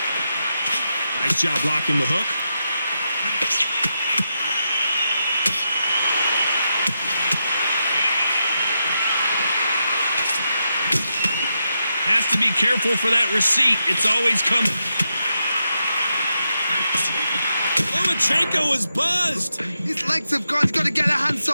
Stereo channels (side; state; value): both; inverted; correlation -0.85